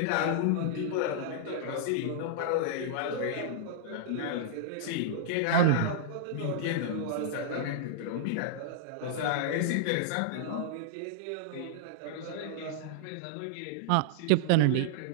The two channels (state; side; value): different; both; correlation -0.01